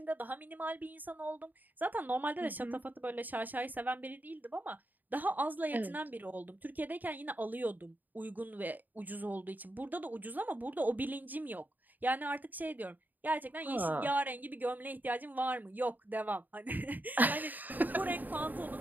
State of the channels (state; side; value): late; left; 0.086 ms